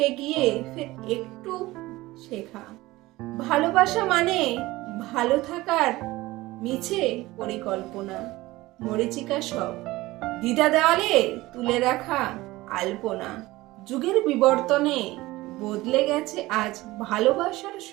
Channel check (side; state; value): left; quieter; 18.9 dB